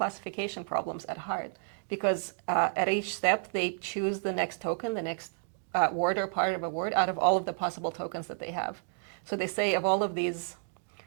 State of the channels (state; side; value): silent; left; 57 dB below the other